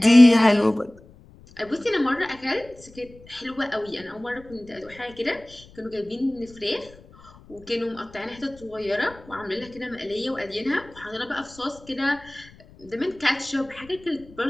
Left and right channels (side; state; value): left; noise; rumble, 23 dB below the sound